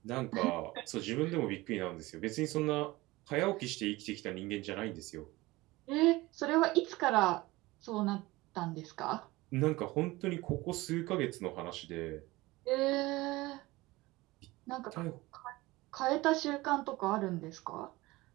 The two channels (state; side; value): quieter; left; 20.3 dB